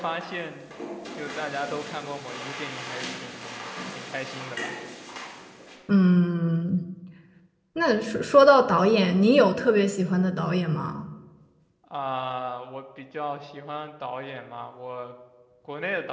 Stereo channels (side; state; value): both; identical; correlation 1.00